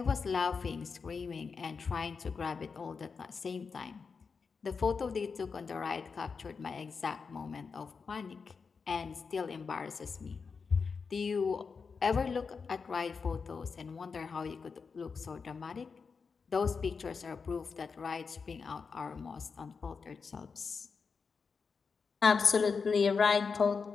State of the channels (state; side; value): quieter; right; 5.3 dB